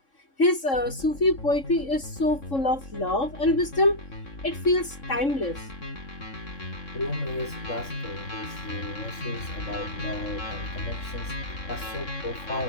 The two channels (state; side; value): late; right; 3.7 ms